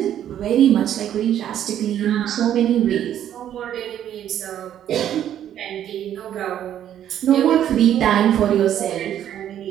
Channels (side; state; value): left; quieter; 10.7 dB